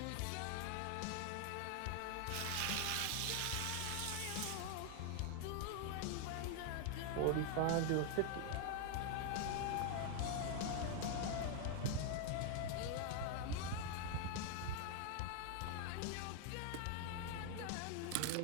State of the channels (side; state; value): both; different; correlation 0.00